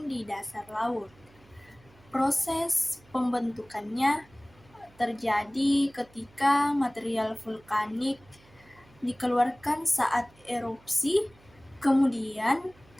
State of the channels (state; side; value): noise; right; hum, 27 dB below the sound